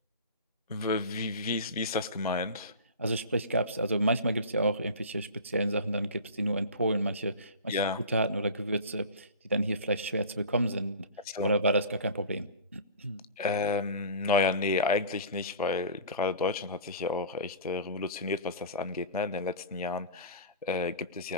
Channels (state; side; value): inverted; both; correlation -0.36